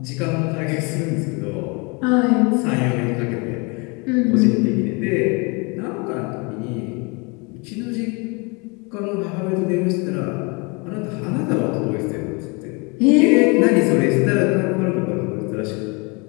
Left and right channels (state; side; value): quieter; right; 30.0 dB